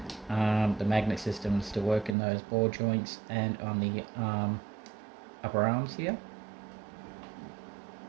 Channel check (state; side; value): drops out; left; at 2.1 s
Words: The magnet systems still work in those ball joints and on the upper arms here.